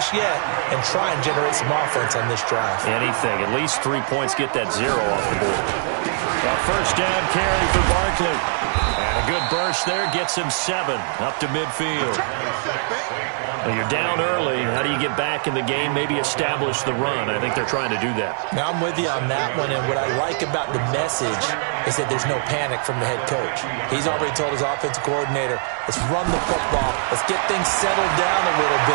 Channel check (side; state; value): left; silent; digital silence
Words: yet and try and generate some offense on this drive. Anything. At least 3 points, get that 0 off the board. A 1st down carry for Barkley. And a good burst there gets him 7 up to midfield. Well, you're down early. How do you get back in the game? Maybe establish the run. I think they're trying to do that. Now, I'm with you on that one, and what I like about the message is that there's no panic from the head coach. He's already told his offensive coordinator, let's run the football, let's get things settled down a little